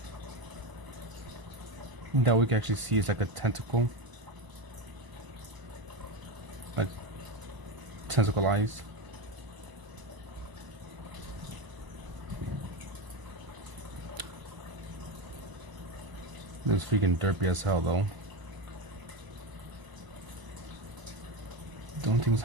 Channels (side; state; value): left; late; 1.0 ms